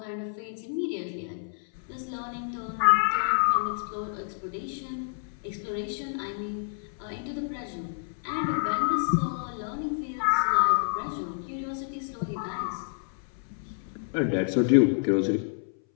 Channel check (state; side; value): silent; right; 59 dB below the other